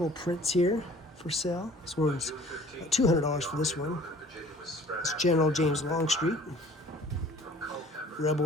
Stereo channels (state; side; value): normal; both; correlation 0.51